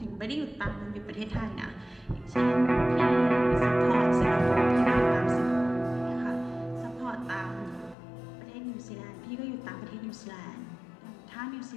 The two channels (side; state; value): right; drops out; at 8.0 s